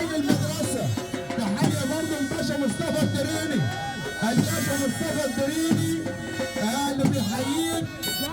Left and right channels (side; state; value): both; identical; correlation 1.00